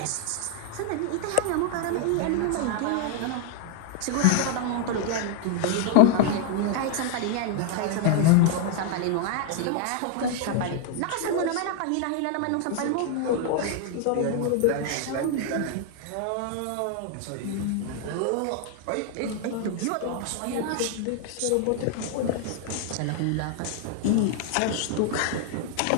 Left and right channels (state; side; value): different; both; correlation 0.00